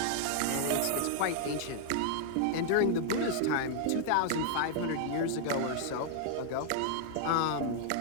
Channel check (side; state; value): both; different; correlation -0.01